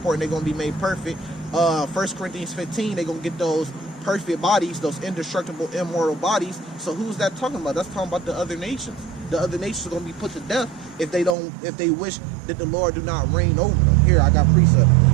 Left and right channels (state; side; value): drops out; left; at 11.4 s